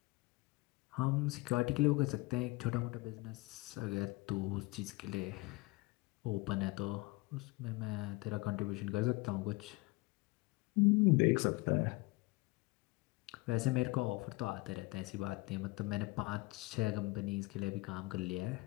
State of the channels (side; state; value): right; quieter; 23.8 dB